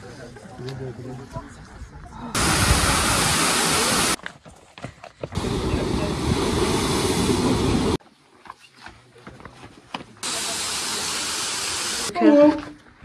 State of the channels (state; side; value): identical; both; correlation 1.00